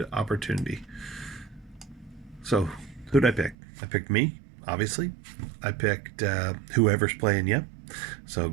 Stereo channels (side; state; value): left; drops out; at 3.6 s